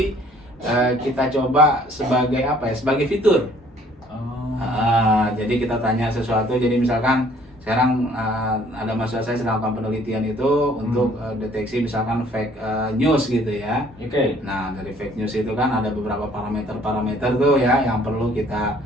kita coba sebagai apa ya? Sebagai fitur. Jadi kita tanya sesuatu, jadi misalkan sekarang ada mahasiswa saya sedang melakukan penelitian itu untuk deteksi misalkan fake news gitu ya. Nah, dari fake news itu kan ada beberapa parameter tuh ya yang perlu kita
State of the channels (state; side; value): normal; both; correlation 0.59